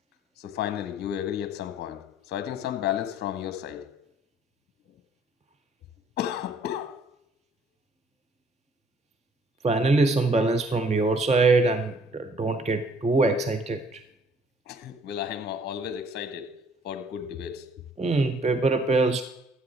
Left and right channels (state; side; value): normal; both; correlation 0.60